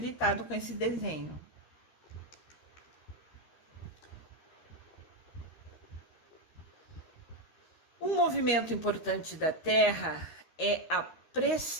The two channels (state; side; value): late; right; 13 ms